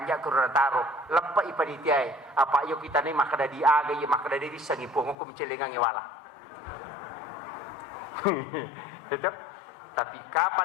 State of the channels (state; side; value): drops out; right; at 5.2 s